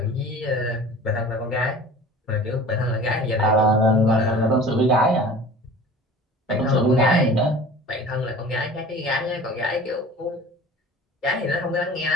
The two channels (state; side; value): normal; both; correlation 0.42